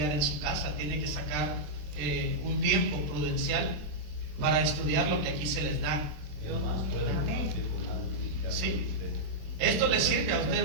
en su casa, tiene que sacar un tiempo prudencial para estudiar lo que aquí se les da. Sí. Esto le sirve a usted,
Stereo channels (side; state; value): left; late; 27 ms